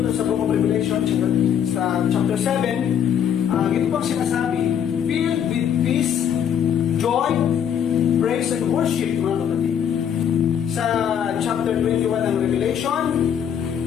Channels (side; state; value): right; quieter; 8.8 dB